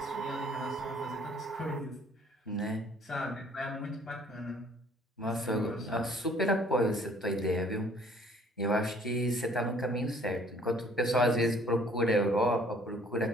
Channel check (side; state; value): both; normal; correlation 0.57